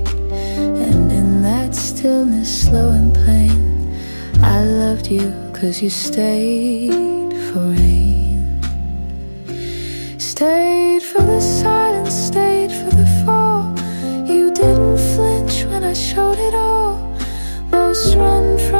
And in that stillness, slow and plain, I loved you 'cause you stayed for rain. Stayed for the silence, stayed for the fall. You didn't flinch when I showed it all. Most run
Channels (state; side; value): inverted; both; correlation -1.00